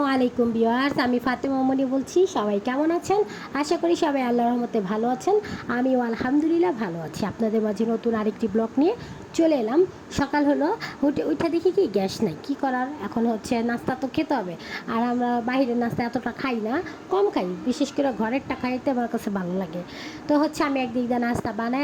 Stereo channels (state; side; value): identical; both; correlation 1.00